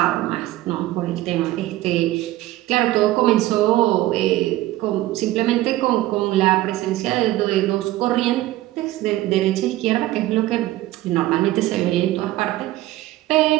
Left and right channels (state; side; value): quieter; left; 16.2 dB